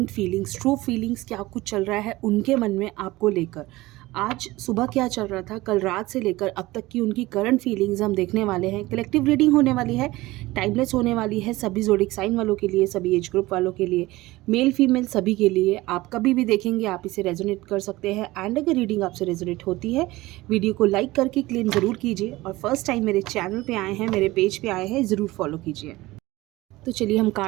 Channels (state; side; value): quieter; left; 19.2 dB